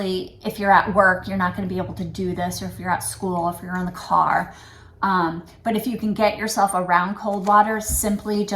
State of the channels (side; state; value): both; identical; correlation 1.00